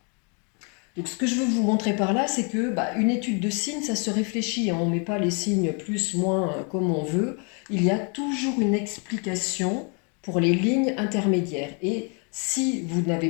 Donc, ce que je veux vous montrer par là, c'est que une étude de signes, ça se réfléchit. On ne met pas les signes plus, moins, comme on veut. Il y a toujours une explication pour les lignes intermédiaires. Et si vous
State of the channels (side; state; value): right; quieter; 36.3 dB